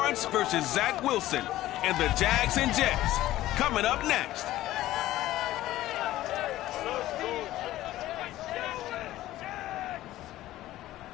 versus Zach Wilson and the Jags and Jets coming up next.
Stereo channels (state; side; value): quieter; right; 15.2 dB